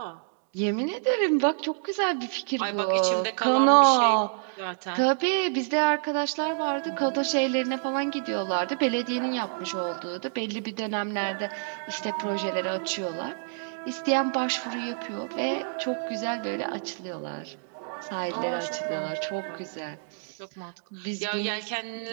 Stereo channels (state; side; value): silent; left; digital silence